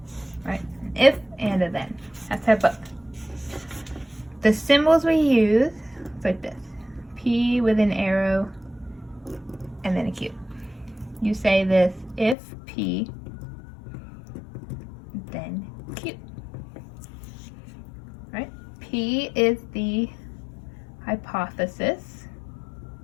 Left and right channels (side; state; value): right; drops out; at 12.4 s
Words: Right? An if and a then. That's our book. The symbols we use, it's like this. P with an arrow and then a Q. You say this if P, then Q. Right? P is the hypothesis.